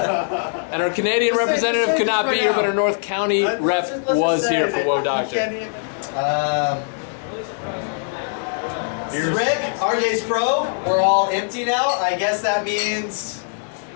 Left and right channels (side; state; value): right; silent; digital silence